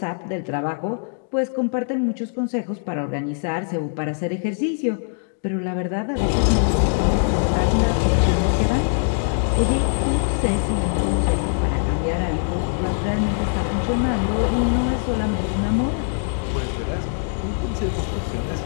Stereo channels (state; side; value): silent; right; digital silence